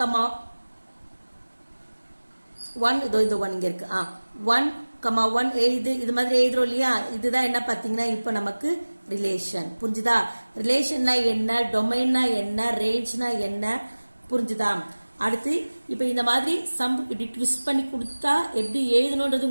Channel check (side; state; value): both; inverted; correlation -1.00